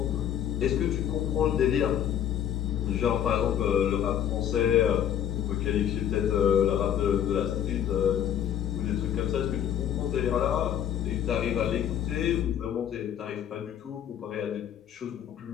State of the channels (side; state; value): right; quieter; 10.0 dB